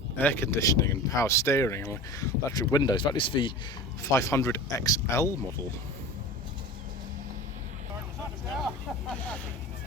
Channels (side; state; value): both; normal; correlation 0.34